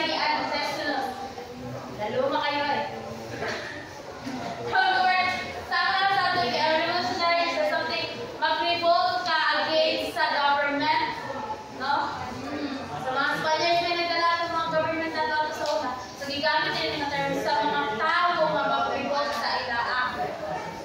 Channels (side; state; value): both; identical; correlation 1.00